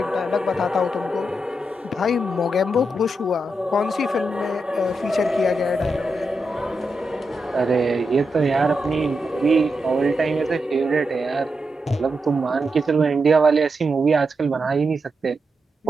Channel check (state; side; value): normal; both; correlation 0.86